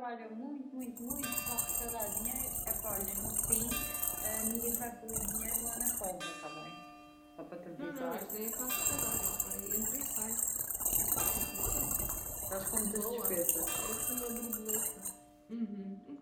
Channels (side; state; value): both; identical; correlation 1.00